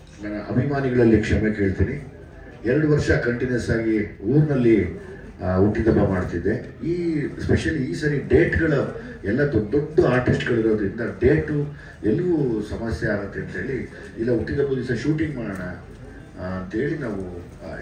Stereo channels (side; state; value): both; identical; correlation 1.00